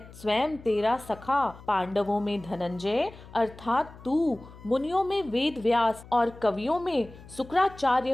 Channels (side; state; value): left; noise; hum, 19 dB below the sound